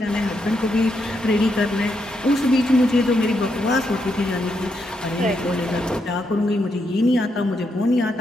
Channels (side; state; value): both; normal; correlation 0.80